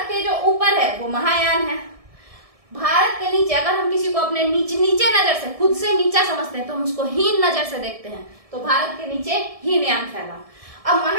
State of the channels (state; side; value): late; left; 1.7 ms